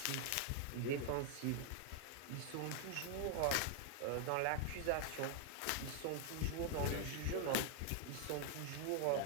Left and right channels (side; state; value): both; different; correlation 0.00